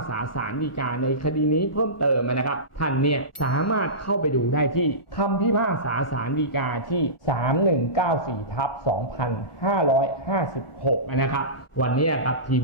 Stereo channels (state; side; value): late; right; 1.4 ms